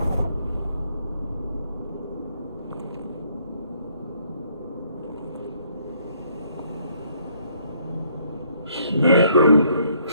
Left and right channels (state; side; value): inverted; both; correlation -0.67